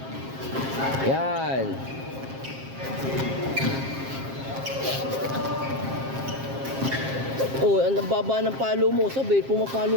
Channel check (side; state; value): left; late; 7.5 ms